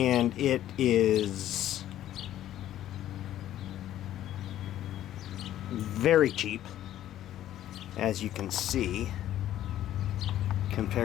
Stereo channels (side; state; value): right; quieter; 12.4 dB